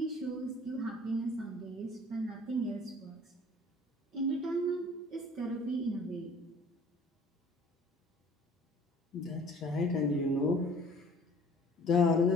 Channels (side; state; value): both; normal; correlation 0.51